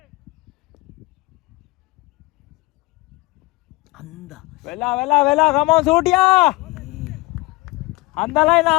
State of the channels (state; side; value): quieter; right; 21.9 dB